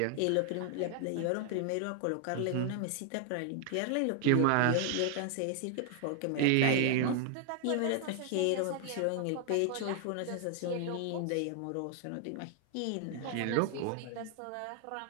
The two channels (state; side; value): different; both; correlation 0.00